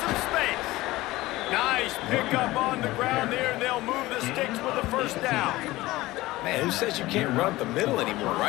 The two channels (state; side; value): quieter; right; 18.5 dB